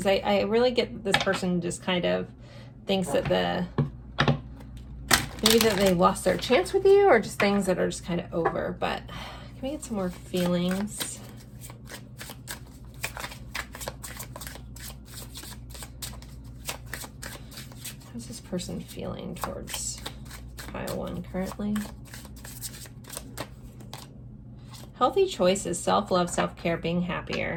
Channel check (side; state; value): both; identical; correlation 1.00